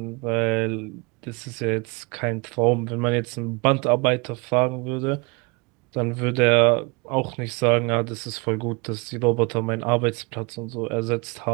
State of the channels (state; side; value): quieter; left; 28.9 dB